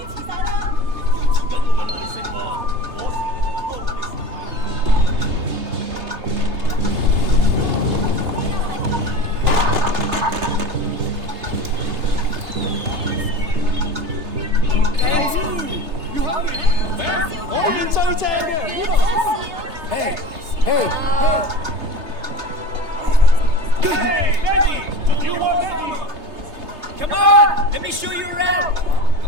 Come on! Let me show you around!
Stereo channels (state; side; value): late; left; 3.3 ms